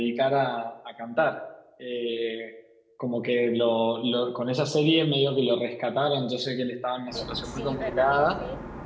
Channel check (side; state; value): both; identical; correlation 1.00